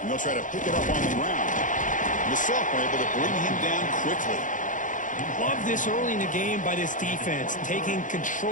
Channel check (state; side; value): late; right; 0.37 ms